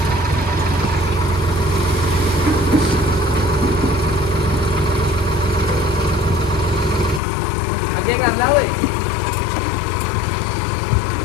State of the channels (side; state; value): right; drops out; at 7.2 s